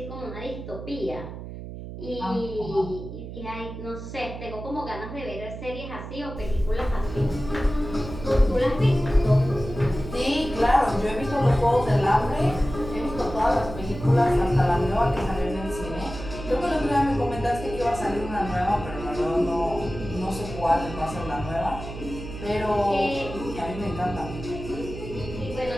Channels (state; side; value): noise; right; hum, 10 dB below the sound